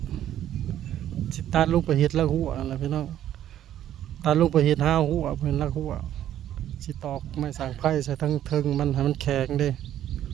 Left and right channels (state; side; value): quieter; left; 11.6 dB